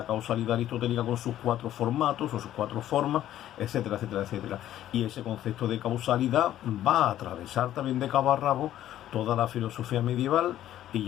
causalidad aristotélica con sus 4 formatos o sus 4 formas, etcétera, etcétera, etcétera. Y ese concepto de causalidad va a atravesar también de cabo a rabo toda la filosofía medieval, y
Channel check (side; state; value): right; quieter; 12.5 dB